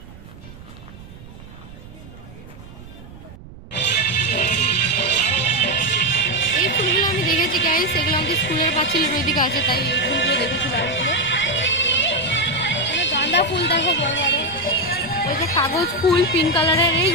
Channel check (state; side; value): noise; right; rumble, 18 dB below the sound